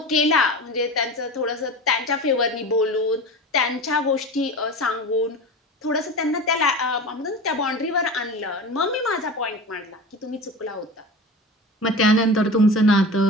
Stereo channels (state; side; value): normal; both; correlation 0.31